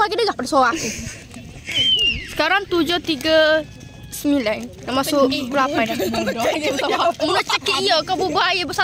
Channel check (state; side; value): identical; both; correlation 1.00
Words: dengar pada suara aku. Sekarang 7.39. Dah masuk pukul 8 dah. Mu nak cakap iya kau berbual air